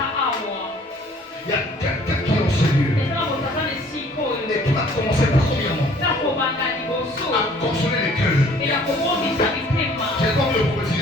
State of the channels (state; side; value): normal; both; correlation 0.55